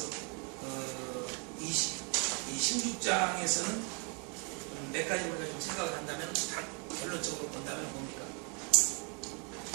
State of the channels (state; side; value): quieter; left; 35.5 dB